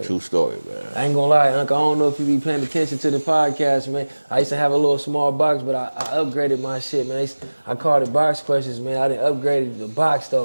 True story, man. I ain't gonna lie, Uncle. I don't know if you be paying attention to the podcast, man. I used to have a little small box, but I upgraded my shit, man. I called it box questions, man. I done upgraded the box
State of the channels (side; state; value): both; inverted; correlation -1.00